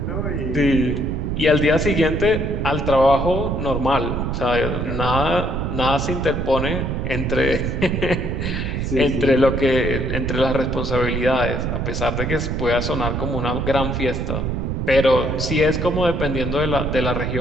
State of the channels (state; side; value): noise; right; rumble, 2 dB below the sound